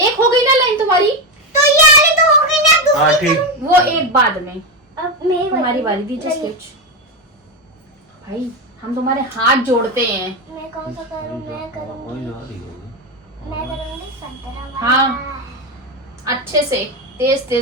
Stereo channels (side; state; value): both; normal; correlation 0.12